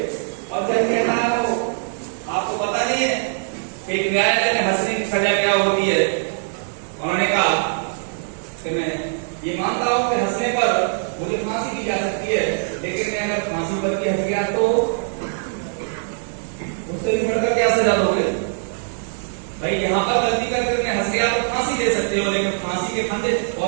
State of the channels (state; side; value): silent; left; digital silence